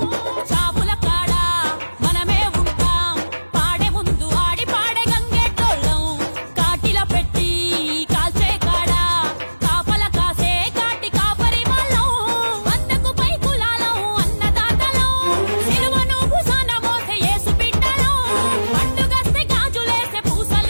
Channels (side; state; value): both; inverted; correlation -1.00